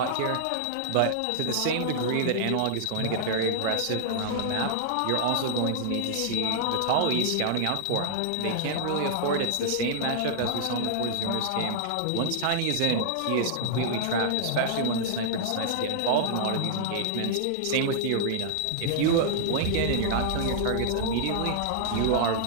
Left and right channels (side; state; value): both; different; correlation -0.01